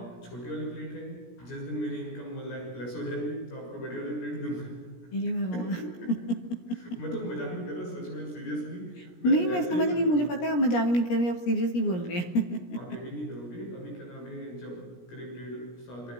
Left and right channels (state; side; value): late; right; 17 ms